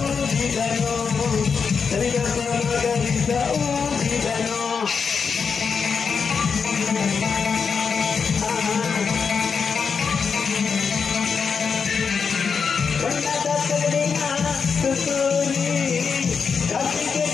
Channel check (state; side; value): quieter; right; 5.8 dB